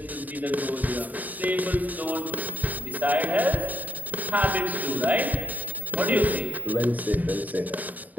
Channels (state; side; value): late; left; 0.080 ms